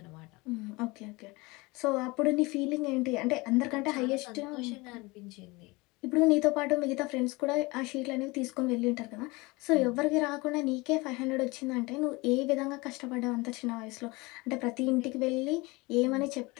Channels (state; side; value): quieter; right; 24.2 dB